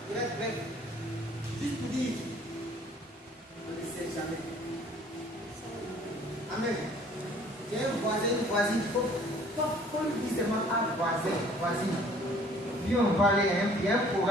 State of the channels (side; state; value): both; normal; correlation 0.55